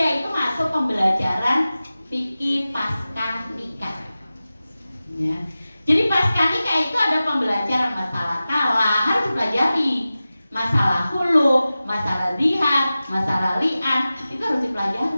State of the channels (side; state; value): both; inverted; correlation -0.95